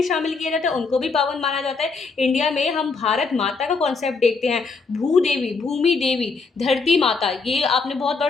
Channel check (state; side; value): quieter; right; 4.4 dB